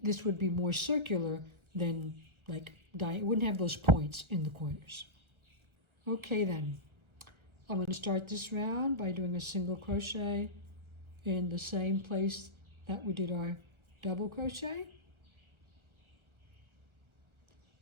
this would be more circular than like it wouldn't have those points in the corners. Okay then, I'm going to start this round by doing a single crochet in the same place that we did our double crochet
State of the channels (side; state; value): left; late; 1.3 ms